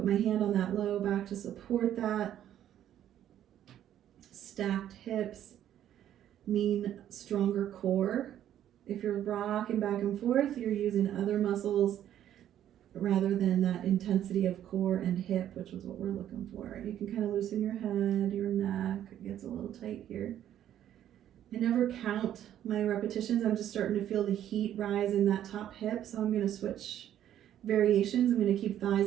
my hand on that low back to support that. Stacked hips mean stronger core. If you're rocking back and forth, you're using other muscles rather than that intensity of core and hip, which is what we're looking for. You can kind of loosen your head, your neck. It gets a little tight here. I never count my repetitions. I'm just starting to feel the heat rise in that top hip. So I'm going to switch variations. I'm going to keep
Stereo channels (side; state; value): left; quieter; 11.1 dB